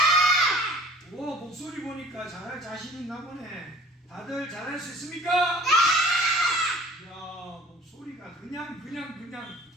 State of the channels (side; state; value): both; normal; correlation 0.49